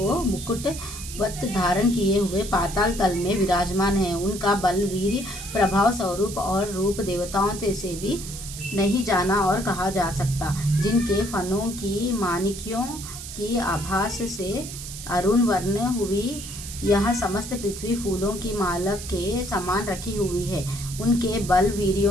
मुकुटवत धारण किए हुए पाताल तल में विराजमान है। उनका बल, वीर्य, प्रभाव, स्वरूप और रूप देवताओं से भी नहीं जाना और कहा जा सकता। जिनके फनों की माणिक्यों की आभास से अरुण वर्ण हुई यह समस्त पृथ्वी फूलों की माला के समान रखी हुई है। उनके बल,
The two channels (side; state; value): right; noise; hiss, 10 dB below the sound